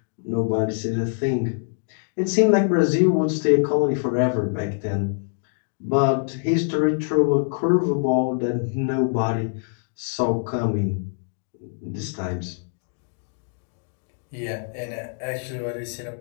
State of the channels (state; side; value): silent; right; 62 dB below the other